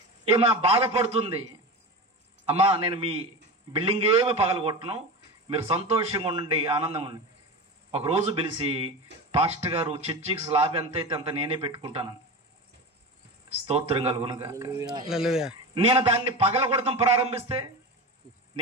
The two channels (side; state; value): both; normal; correlation 0.26